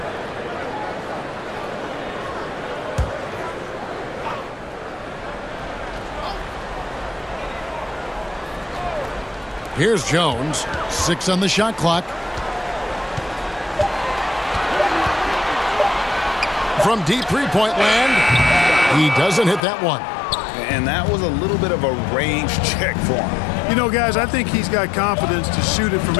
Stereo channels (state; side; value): drops out; right; at 19.6 s